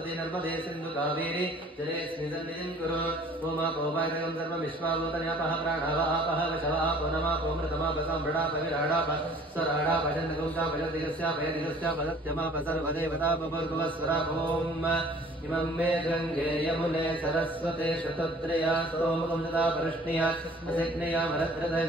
नर्मदे सिन्धु कावेरी जलेऽस्मिन् सन्निधिं कुरु ओमापोपायकं सर्वमिश्वाभूतन्यापः प्राणावापः वशवापो नमापो मृतमापसाम्भृडापविराडाप स्वराडापचन्द्रगुंसापयदिगस्यापयदिगस्यापदत्यमापसर्वदेवतापभर्गुवस्वरापोम् इमं मे गङ्गे यमुने सरस्वते शतत्रया सोमकं सदा परष्णिया असिग्नया मरद्रथ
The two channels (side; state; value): both; normal; correlation 0.52